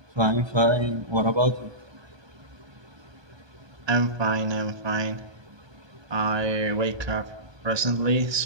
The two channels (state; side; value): late; left; 1.2 ms